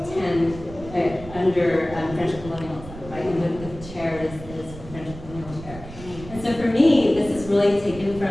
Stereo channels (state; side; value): noise; right; rumble, 14 dB below the sound